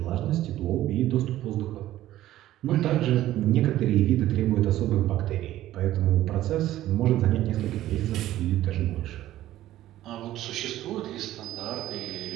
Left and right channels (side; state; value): left; quieter; 14.1 dB